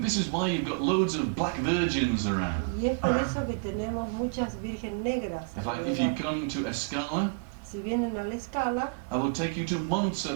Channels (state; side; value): quieter; left; 32.5 dB